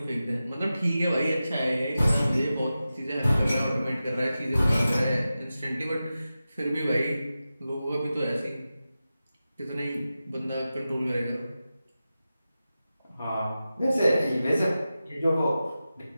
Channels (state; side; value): inverted; both; correlation -0.93